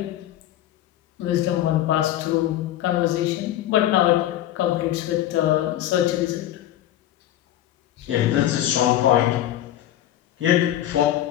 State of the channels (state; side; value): quieter; right; 12.8 dB